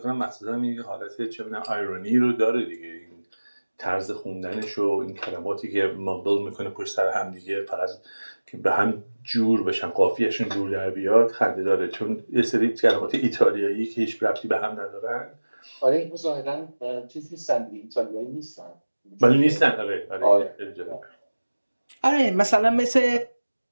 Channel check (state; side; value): inverted; both; correlation -1.00